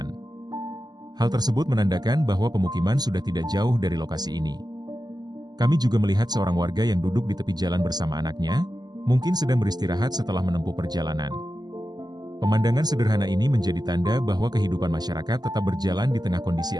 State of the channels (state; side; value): late; left; 0.20 ms